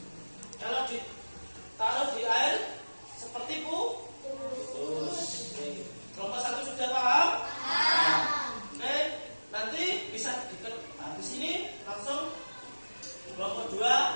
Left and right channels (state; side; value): inverted; both; correlation -1.00